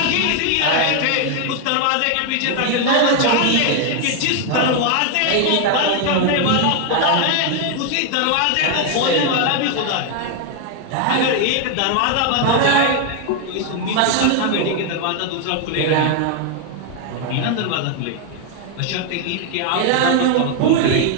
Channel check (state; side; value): different; both; correlation 0.01